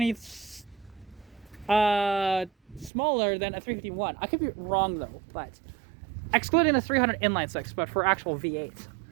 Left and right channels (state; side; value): drops out; left; at 2.9 s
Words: smaller than a 351. I could be wrong though, but excluding the 300 inline 6, but for actual V8.